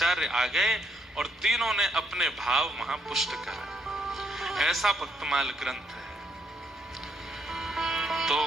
आ गए और तीनों ने अपने भाव वहां पुष्ट करा। ऐसा भक्तमाल ग्रंथ है। तो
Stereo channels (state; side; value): normal; both; correlation 0.73